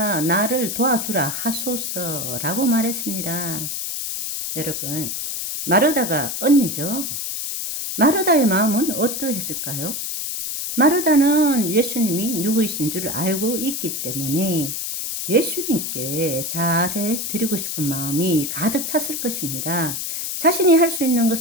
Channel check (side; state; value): left; noise; hiss, 4 dB below the sound